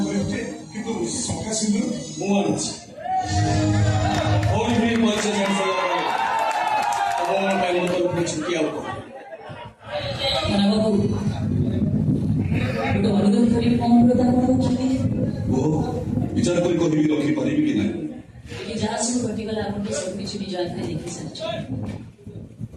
କିନ୍ତୁ ଶଙ୍ଖା ସିନ୍ଦୁର ମୁଁ ଆଣିଛି। ଭଉଣୀ ବି ପରିଚୟ ଜାଣିସାରିଲା ପରେ ତମ ପାଇଁ ମୋ ତରଫରୁ ଛୁଟି ଆଉ କଣ? ବାବୁ ଗୋଟେ ଅନୁରୋଧ କରି କଣ ଅନୁରୋଧ କରୁଛନ୍ତି? ବିଚାର କରି କହିବି ରଖିପାରିବି କି ନାହିଁ? ଏଠି ଯାହା ସବୁ ଘଟିଗଲା ଆପଣ ତ ସବୁ କିଛି ନିଜ ଆଖିରେ ଦେଖି ସାରିଛନ୍ତି,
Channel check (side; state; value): both; identical; correlation 1.00